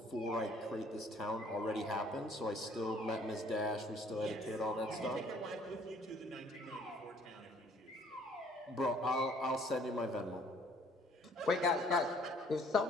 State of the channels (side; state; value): both; normal; correlation 0.59